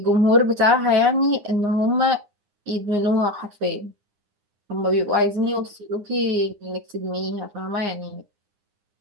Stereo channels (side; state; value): left; late; 9.8 ms